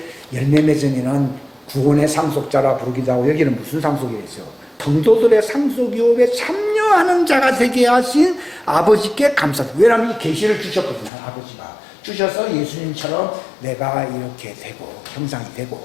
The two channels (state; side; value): drops out; right; at 11.1 s